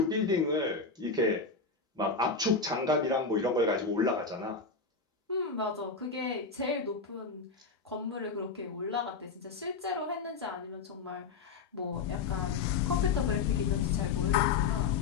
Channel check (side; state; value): right; quieter; 4.7 dB